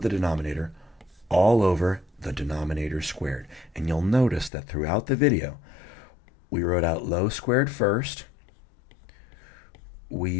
the denominator all over the denominator squared. And you'll notice that throughout the video, we wrote out low squared first. We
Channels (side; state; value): right; drops out; at 4.5 s